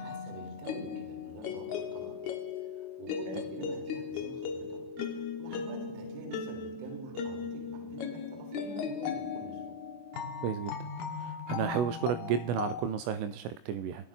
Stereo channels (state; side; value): late; left; 25 ms